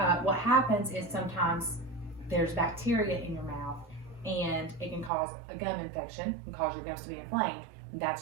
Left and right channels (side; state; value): left; drops out; at 5.1 s